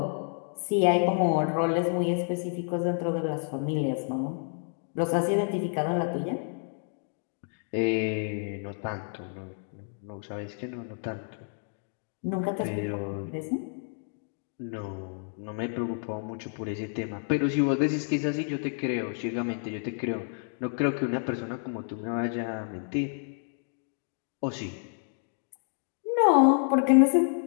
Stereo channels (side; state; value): right; silent; 58 dB below the other